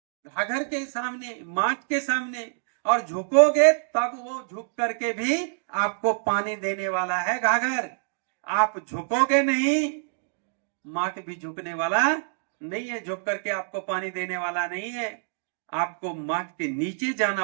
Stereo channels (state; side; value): silent; left; digital silence